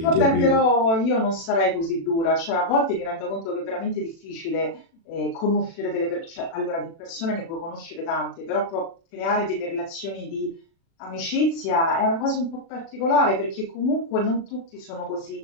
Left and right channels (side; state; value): right; late; 36 ms